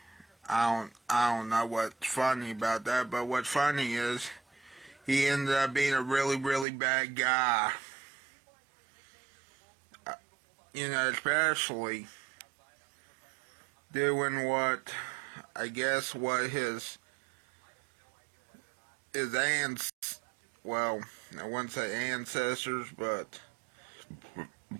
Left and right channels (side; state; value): left; drops out; at 6.7 s